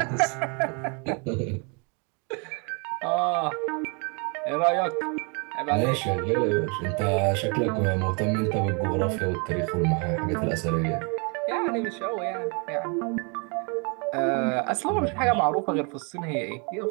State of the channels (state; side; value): quieter; left; 34.4 dB